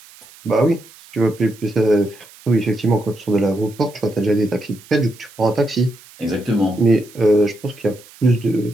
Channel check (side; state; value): right; noise; hiss, 23 dB below the sound